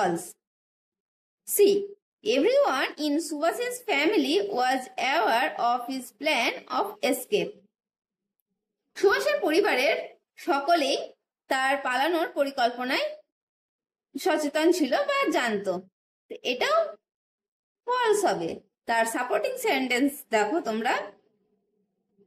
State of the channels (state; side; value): identical; both; correlation 1.00